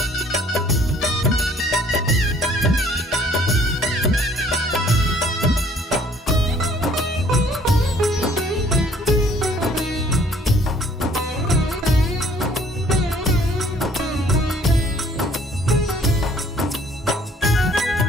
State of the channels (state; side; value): normal; both; correlation 0.59